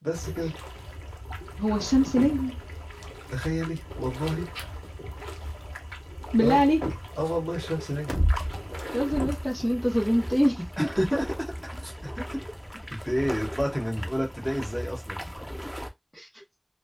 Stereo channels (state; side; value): identical; both; correlation 1.00